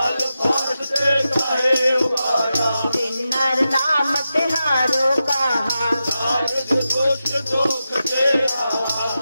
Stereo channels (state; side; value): inverted; both; correlation -0.90